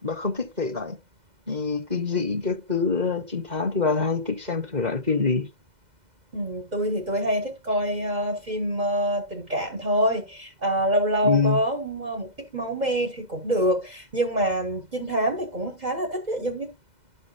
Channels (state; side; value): late; left; 2.0 ms